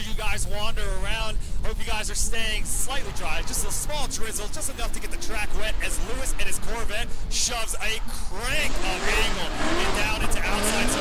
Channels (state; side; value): identical; both; correlation 1.00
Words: you guys wander around. Hope you guys are staying slightly dry. Just a small drizzle, just enough to get the track wet as Lewis and his Corvette shoves a crank of angle and down into outside